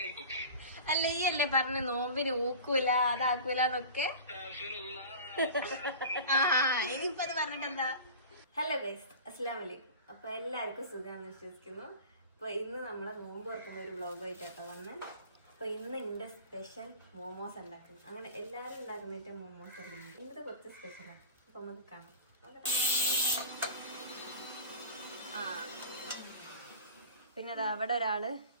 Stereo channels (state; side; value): inverted; both; correlation -0.37